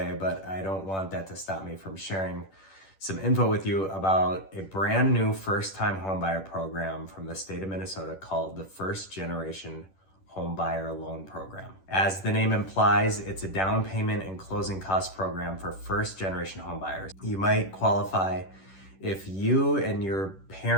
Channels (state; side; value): late; right; 10 ms